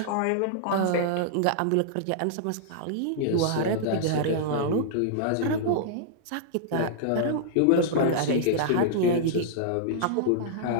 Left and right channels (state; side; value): different; both; correlation -0.02